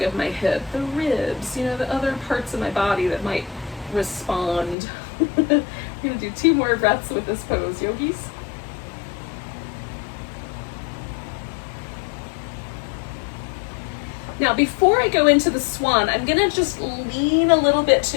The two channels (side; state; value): right; drops out; at 4.8 s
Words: of my hip, the ribs, the other parts of my body that might respond. I'm gonna do 2 more breaths with this pose, yogis. Now, before I go into the swan, I'm gonna just lean a little bit